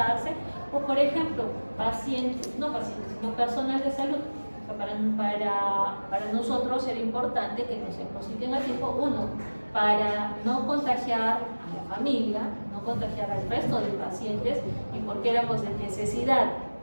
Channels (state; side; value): inverted; both; correlation -1.00